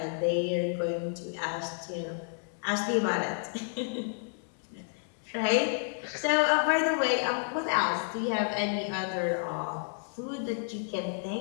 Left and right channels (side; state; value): right; silent; digital silence